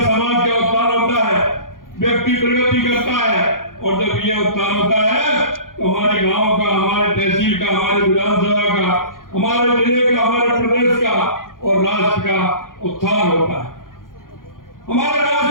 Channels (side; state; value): right; late; 0.90 ms